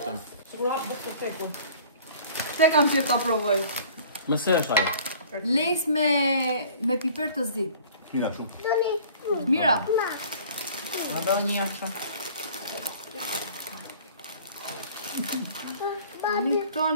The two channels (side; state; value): both; inverted; correlation -0.49